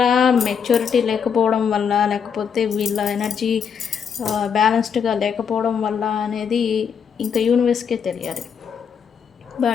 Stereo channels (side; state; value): right; quieter; 7.0 dB